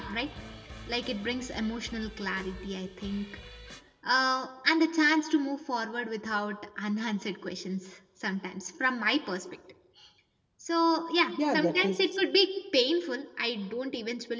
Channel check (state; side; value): identical; both; correlation 1.00